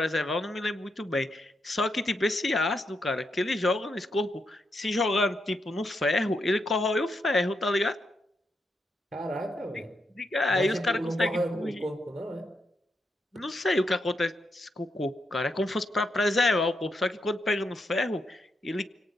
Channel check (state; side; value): normal; both; correlation 0.82